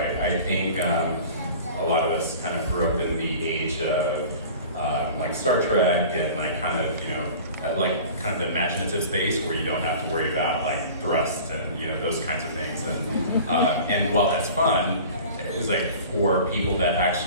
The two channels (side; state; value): both; inverted; correlation -0.41